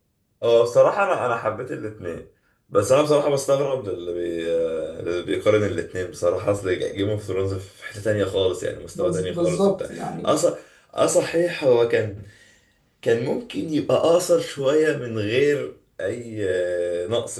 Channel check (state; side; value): identical; both; correlation 1.00